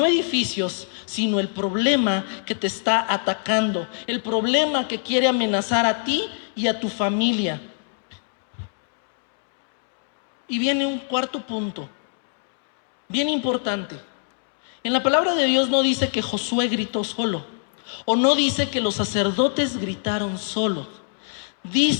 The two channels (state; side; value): silent; right; 63 dB below the other